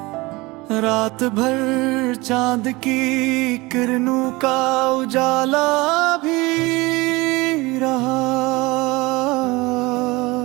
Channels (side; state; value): left; quieter; 22.6 dB